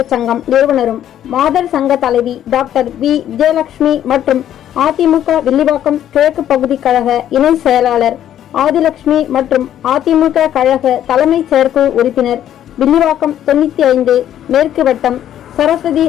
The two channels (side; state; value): right; quieter; 11.0 dB